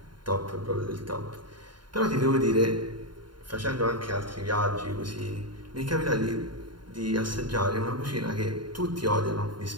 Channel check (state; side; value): late; left; 0.72 ms